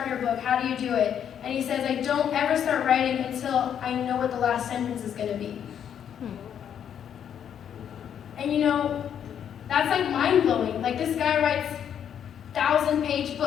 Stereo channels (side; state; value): right; quieter; 8.9 dB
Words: your book? How do you do it? And he says, I don't ever start writing until I know what the last sentence is going to be. And you know, that's like mind-blowing. Like, this guy writes 1,000-page